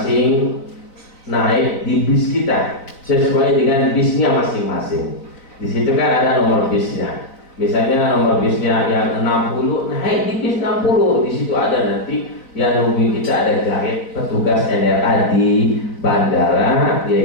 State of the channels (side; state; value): right; late; 3.9 ms